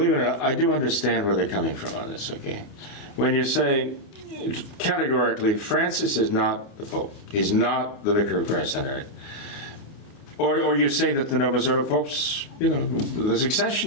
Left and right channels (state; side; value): late; right; 28 ms